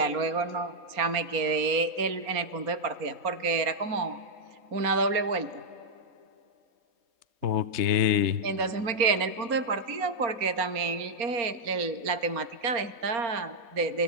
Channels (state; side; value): late; left; 4.3 ms